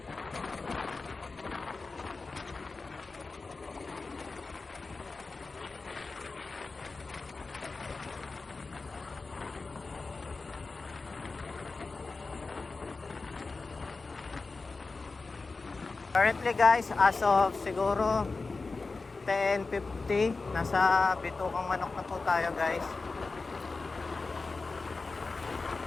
Currently guys, as of siguro 10:50, nasa Bitukang Manok na po tayo guys.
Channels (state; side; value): quieter; right; 3.9 dB